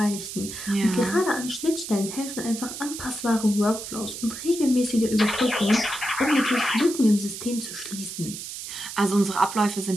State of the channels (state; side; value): noise; right; hiss, 9 dB below the sound